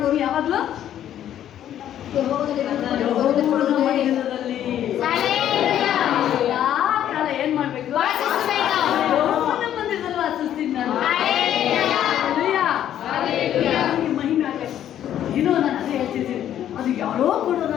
ಯಾವಾಗಲೂ ಯೆಹೋವನ ಮಂದಿರದಲ್ಲಿ ಎಲ್ಲಾ ಕಾಲ ಏನ್ ಮಾಡ್ಬೇಕು? ಯೆಹೋವನ ಮಂದಿರದಲ್ಲಿ ವಾಸಿಸ್ತೀನಿ ನಾನು. ಮಹಿಮೆ ಆಗಲಿ. ಏನೋ ನಾನು ಅದೇ ಹೇಳ್ತಿದ್ದೀನಿ, ಅದು ಯಾರೋ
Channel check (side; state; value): right; quieter; 10.9 dB